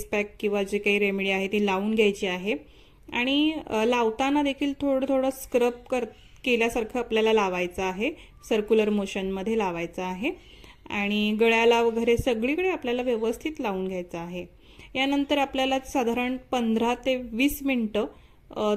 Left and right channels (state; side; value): identical; both; correlation 1.00